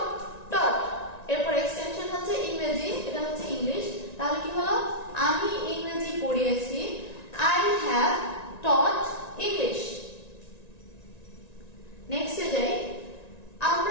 টট। এরপর এক্সটেনশন হচ্ছে ইংরেজি, এটা হচ্ছে ইংলিশ। তাহলে কি হলো? আমি ইংরেজি পড়িয়েছি, আই হ্যাভ টট ইংলিশ। নেক্সটে যাই,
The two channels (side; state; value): right; late; 1.9 ms